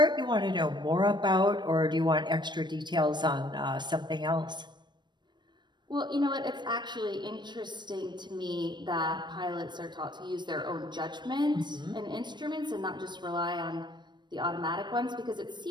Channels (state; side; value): late; left; 0.22 ms